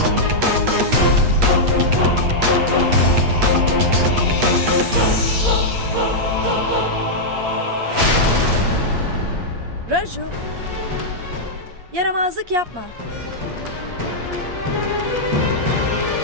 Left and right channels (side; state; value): left; late; 8.4 ms